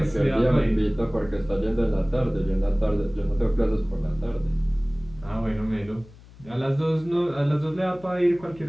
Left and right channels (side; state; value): left; noise; hum, 22 dB below the sound